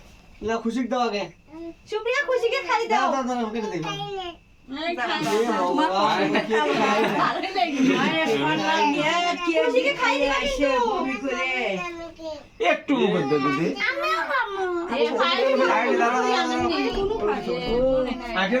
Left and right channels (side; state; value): both; identical; correlation 1.00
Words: না খুশি দাও আগে। সুপ্রিয়া খুশিকে খালি দাও দাও দাও কেটে দেব। খুশিকে খাই আসে বমি করে একটু মুখ দে দিদি। আগে